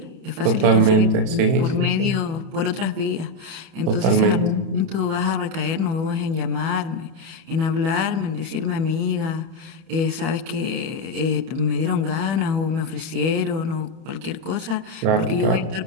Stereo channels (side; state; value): left; late; 31 ms